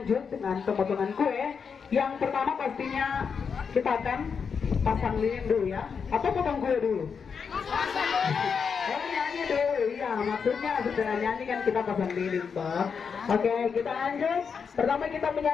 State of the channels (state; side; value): quieter; right; 6.1 dB